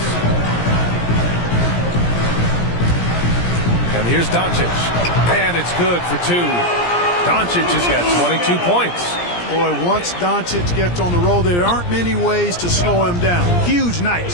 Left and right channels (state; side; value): late; right; 17 ms